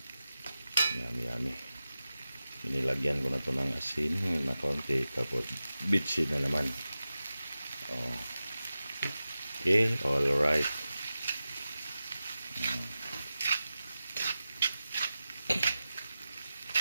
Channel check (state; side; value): inverted; both; correlation -0.93